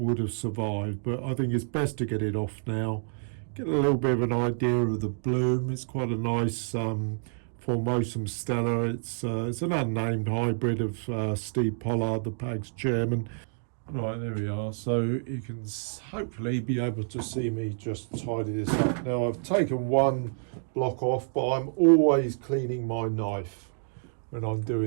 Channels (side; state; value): left; silent; digital silence